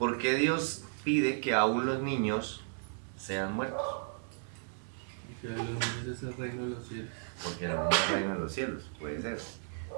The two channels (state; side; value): silent; left; digital silence